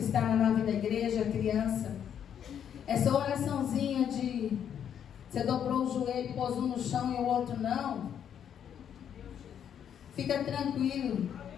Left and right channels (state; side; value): quieter; right; 8.9 dB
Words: na nave da igreja, criança. Essa oraçãozinha de você dobrou o joelho, pôs um no chão e o outro não. Fica tranquilo.